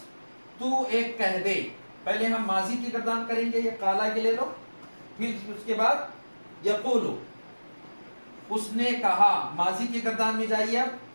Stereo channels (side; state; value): both; inverted; correlation -1.00